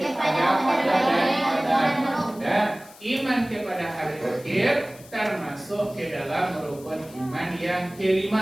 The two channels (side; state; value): left; noise; hiss, 22 dB below the sound